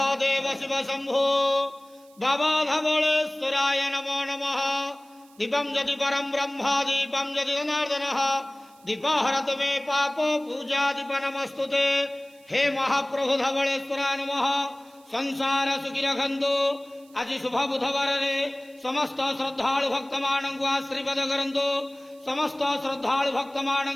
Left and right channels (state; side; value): noise; right; hiss, 29 dB below the sound